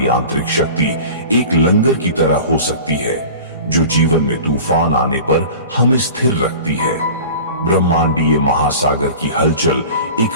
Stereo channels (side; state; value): both; inverted; correlation -0.39